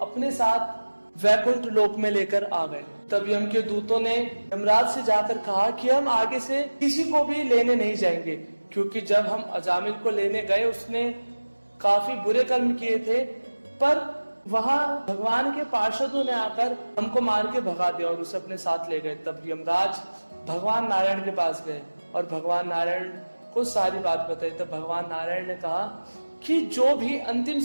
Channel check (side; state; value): both; inverted; correlation -1.00